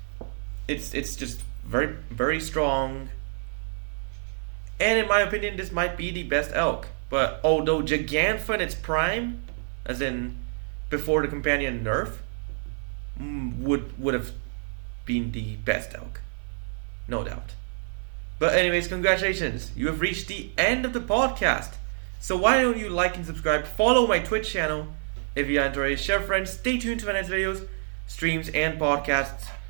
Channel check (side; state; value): left; silent; 60 dB below the other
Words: it's just very strong. And in my opinion, this might be the best elk. But although Giganta in its prime, as in before the companion nerf, would have been the best elk, no doubt. But anyways, congratulations, you have reached the end of the podcast. So why don't you like and subscribe, follow my Twitch channel if you enjoy, share friends, stay tuned to my next videos, streams, and podcasts.